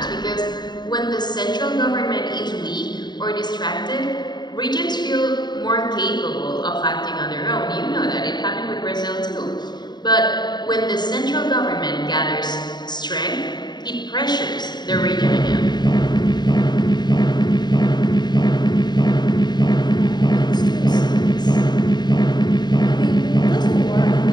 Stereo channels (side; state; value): right; late; 0.21 ms